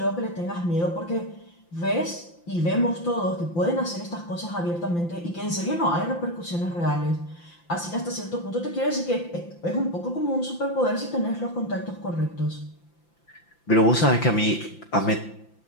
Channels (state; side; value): late; right; 5.9 ms